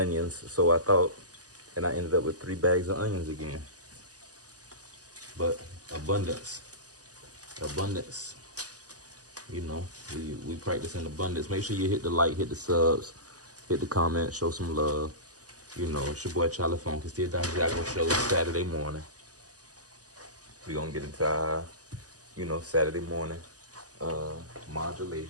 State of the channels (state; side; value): late; left; 0.67 ms